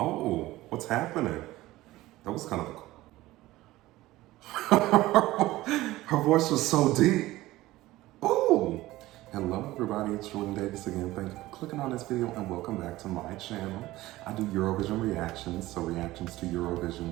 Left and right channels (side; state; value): left; quieter; 17.4 dB